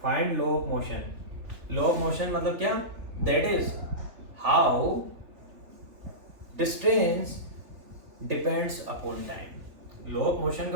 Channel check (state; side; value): late; left; 3.4 ms